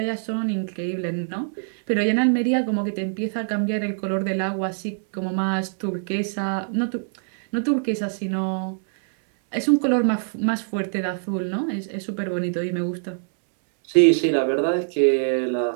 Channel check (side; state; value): left; silent; 63 dB below the other